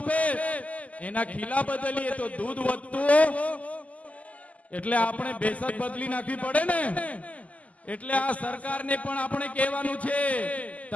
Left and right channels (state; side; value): late; right; 0.072 ms